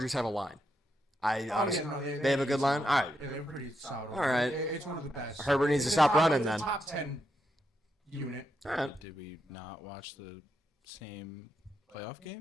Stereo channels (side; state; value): both; normal; correlation 0.82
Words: have a line? Honestly, no, they have a good line. All right. Yeah, they're pretty solid. All right. It's one of the best. Herbert needs to It's stop top- running it's a then. Top 10 unit. All right. Did we not watch the same playoff